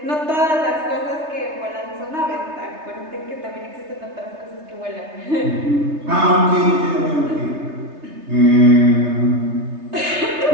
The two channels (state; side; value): late; left; 3.3 ms